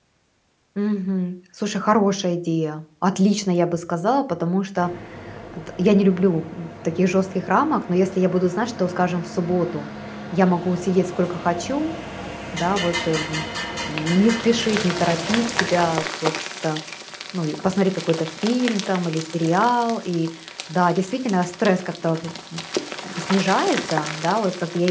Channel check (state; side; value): identical; both; correlation 1.00